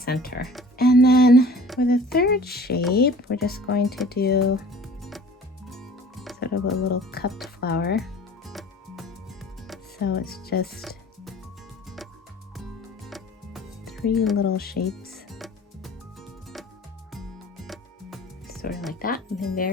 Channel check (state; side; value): normal; both; correlation 0.47